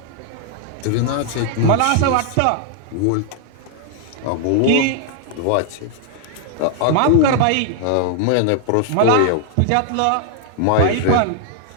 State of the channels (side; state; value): both; different; correlation 0.00